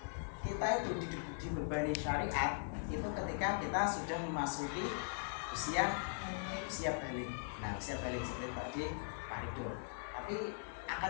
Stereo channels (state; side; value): silent; right; 51 dB below the other